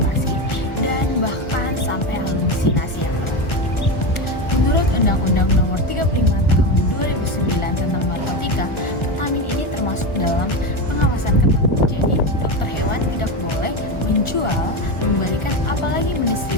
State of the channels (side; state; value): right; late; 1.4 ms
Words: dan bahkan sampai halusinasi yang berat. Menurut Undang-Undang Nomor 35 Tahun 2009 tentang narkotika, ketamin ini termasuk dalam pengawasan ketat. Jadi, dokter hewan tidak boleh menjual, memberikan, apalagi